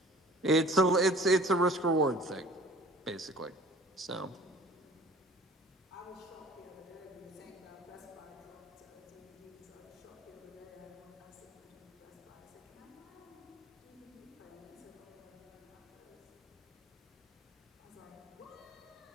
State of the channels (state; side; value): normal; both; correlation 0.48